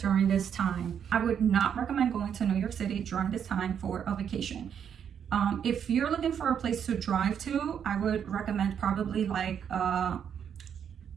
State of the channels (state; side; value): quieter; left; 8.2 dB